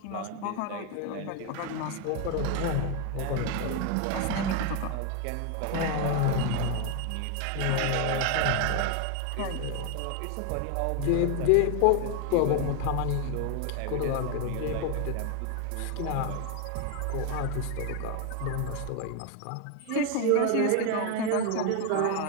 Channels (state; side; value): different; both; correlation 0.01